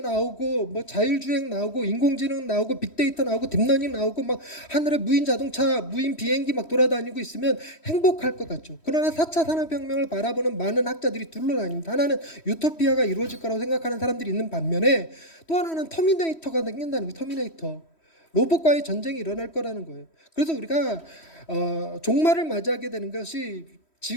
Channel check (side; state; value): right; late; 3.1 ms